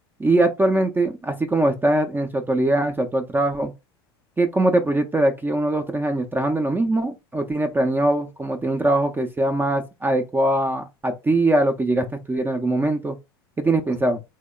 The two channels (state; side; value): normal; both; correlation 0.82